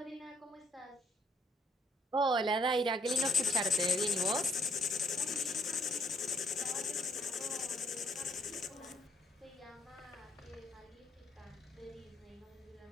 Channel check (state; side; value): normal; both; correlation 0.70